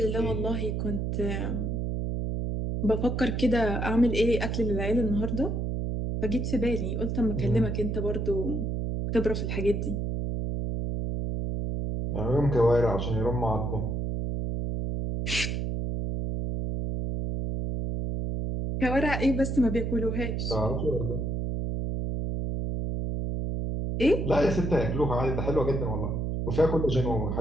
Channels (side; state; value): right; noise; hum, 1 dB below the sound